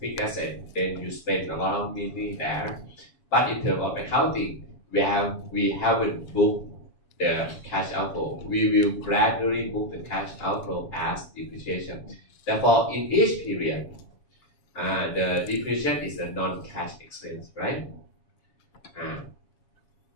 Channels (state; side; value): late; right; 7.1 ms